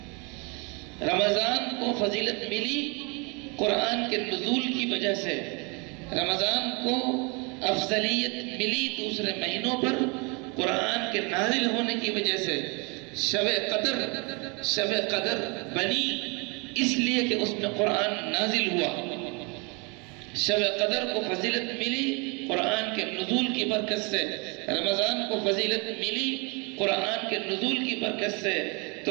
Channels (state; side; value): quieter; left; 31.0 dB